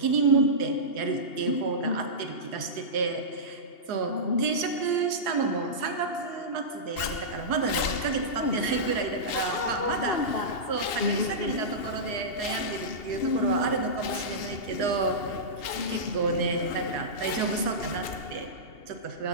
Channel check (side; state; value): right; late; 2.8 ms